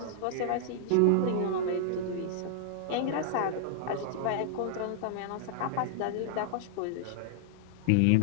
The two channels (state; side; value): different; both; correlation -0.01